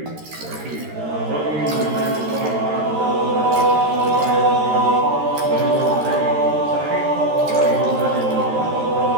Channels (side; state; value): left; late; 13 ms